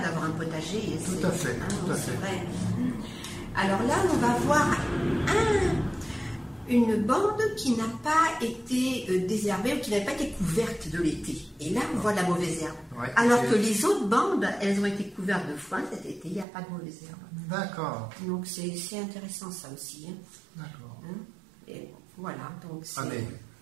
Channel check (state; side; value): drops out; left; at 16.4 s